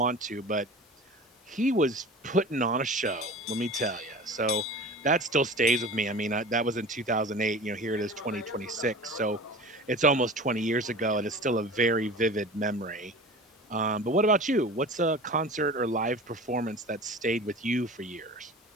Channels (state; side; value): normal; both; correlation 0.37